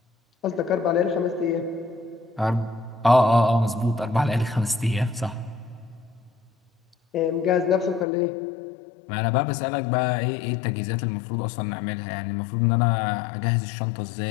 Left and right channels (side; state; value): right; drops out; at 8.1 s